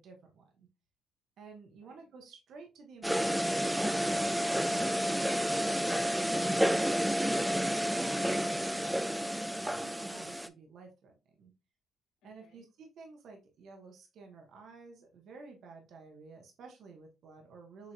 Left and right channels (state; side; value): normal; both; correlation 0.98